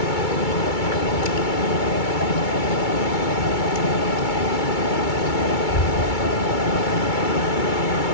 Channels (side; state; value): right; late; 2.2 ms